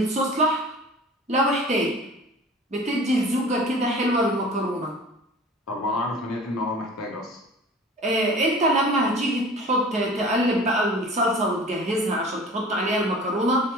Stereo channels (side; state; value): both; normal; correlation 0.42